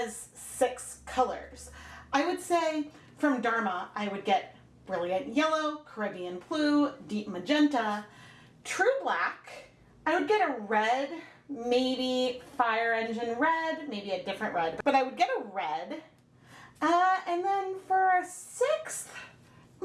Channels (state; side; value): identical; both; correlation 1.00